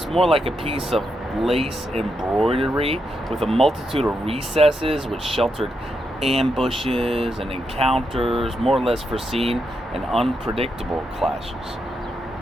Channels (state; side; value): normal; both; correlation 0.83